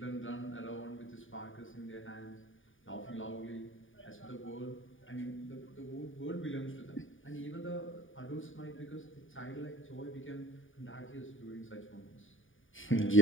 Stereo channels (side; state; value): right; late; 0.57 ms